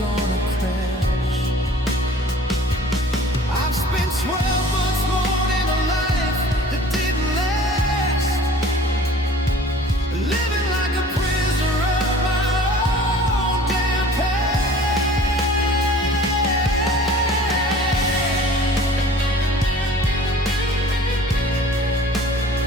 gonna crash. I've spent 12 months more in a life that didn't last, living like a prisoner of my own damn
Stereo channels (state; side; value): normal; both; correlation 0.48